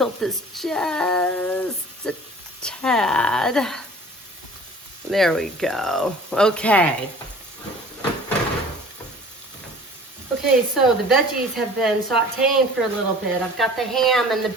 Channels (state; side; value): normal; both; correlation 0.46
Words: this just a tad. There we go. Okay. Okay, so the veggies have been sauteing for a little bit. I've got the ham and the